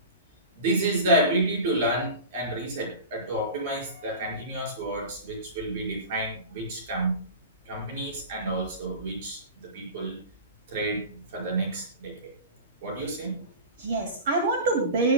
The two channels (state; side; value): inverted; both; correlation -0.32